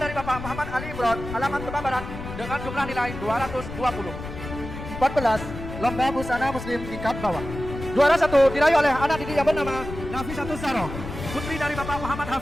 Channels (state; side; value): noise; left; rumble, 9 dB below the sound